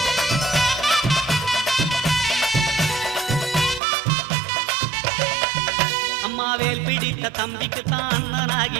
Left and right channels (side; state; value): left; drops out; at 3.8 s